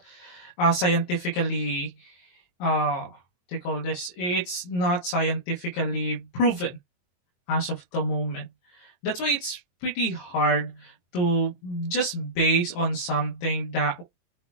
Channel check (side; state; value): right; late; 22 ms